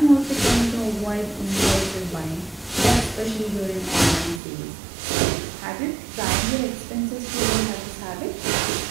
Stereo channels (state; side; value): drops out; left; at 4.4 s